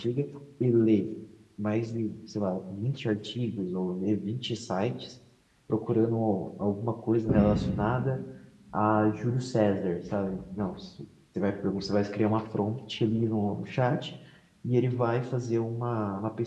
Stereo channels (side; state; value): both; identical; correlation 1.00